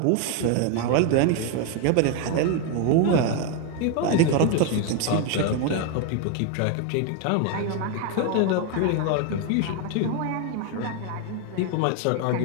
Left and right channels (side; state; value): both; different; correlation 0.01